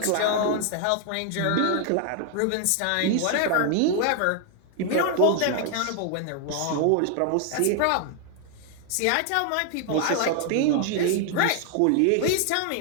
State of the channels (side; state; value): both; different; correlation 0.00